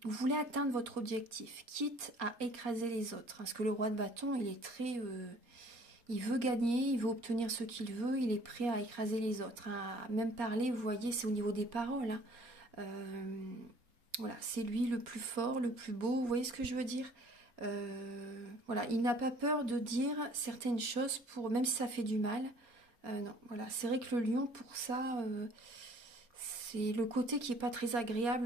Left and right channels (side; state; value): left; late; 4.2 ms